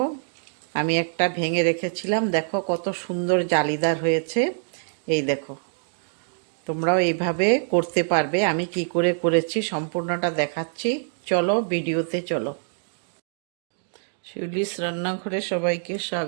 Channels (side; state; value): left; silent; digital silence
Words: আমি একটা ভেঙে রেখেছিলাম, দেখো কত সুন্দর জালিদার হয়েছে। এই দেখো, তোমরাও এইভাবে করতে পারবে। আমি কি করে করেছি সম্পূর্ণটা দেখাচ্ছি, চলো ভিডিওতে চলো। শিউলিস রান্নাঘরে সবাইকে